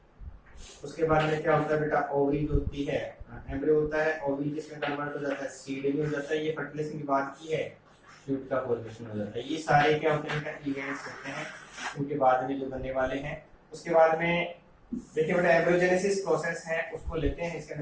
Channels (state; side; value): identical; both; correlation 1.00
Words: उसके बाद में क्या होता है बेटा ओवरी होती है एम्ब्रियो होता है, ओवी जिसमें कन्वर्ट हो जाता है, सीड में हो जाता है, ये फर्टिलाइजेशन की बात की है, फ्रूट का फॉर्मेशन हो जाता है। ये सारे क्या होते हैं, इवेंट्स होते हैं उनके बाद में जो बनने वाले हैं। उसके बाद में देखिए बेटा एम्ब्रियोजेनेसिस प्रोसेस है, उसको लेते हैं। इसके